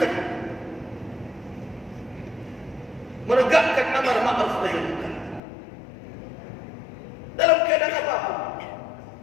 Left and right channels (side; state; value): right; drops out; at 5.4 s